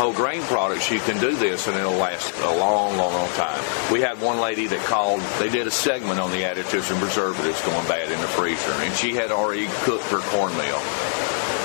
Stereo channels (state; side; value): silent; right; digital silence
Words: grain products, you can do this and it'll last a long, long, long time. We had one lady that called, they did a segment on the additives and preservatives going bad in the freezer, and she had already cooked her cornmeal.